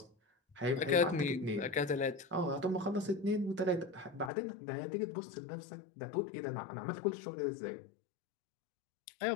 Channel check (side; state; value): right; drops out; at 4.3 s